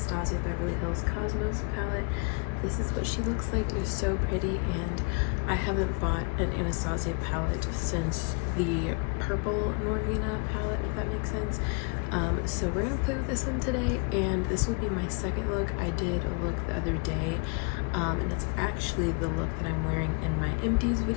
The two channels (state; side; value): quieter; right; 34.7 dB